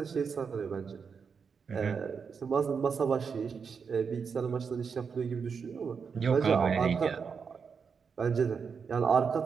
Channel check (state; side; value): quieter; left; 6.0 dB